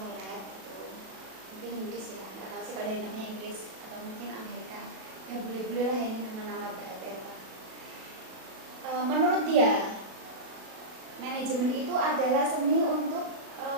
Follett itu mungkin Inggris ya, nggak tahu sih kalau dari namanya Inggris atau mungkin Amerika. Ya boleh-boleh lah ini nama-nama bahasa Eropa. Menurut dia, manajemen itu adalah seni untuk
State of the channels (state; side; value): late; left; 37 ms